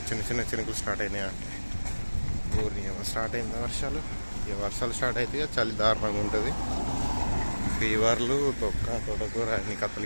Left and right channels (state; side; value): inverted; both; correlation -1.00